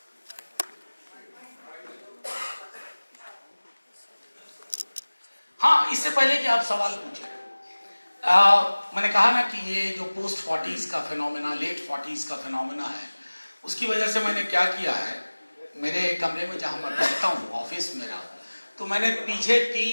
हाँ, इससे पहले कि आप सवाल पूछें, मैंने कहा ना कि ये जो पोस्ट 40s का फिनोमेना, लेट 40s का फिनोमेना है, उसकी वजह से मैंने क्या किया है, मेरे कमरे में जहां मैं बैठता हूँ, ऑफिस मेरा, तो मैंने पीछे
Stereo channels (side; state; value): both; inverted; correlation -1.00